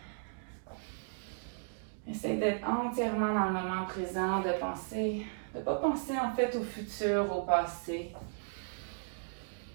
Essaye d'être entièrement dans le moment présent, de ne pas penser en fait au futur, au passé.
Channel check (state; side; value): silent; left; digital silence